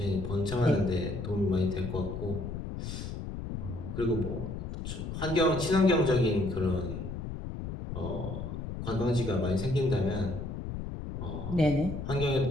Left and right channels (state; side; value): noise; left; rumble, 6 dB below the sound